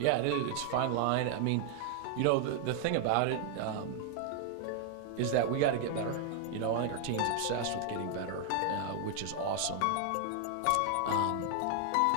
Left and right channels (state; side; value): different; both; correlation 0.00